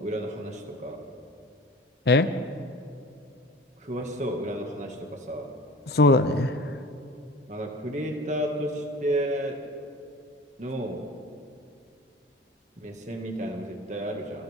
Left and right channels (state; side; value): normal; both; correlation 0.40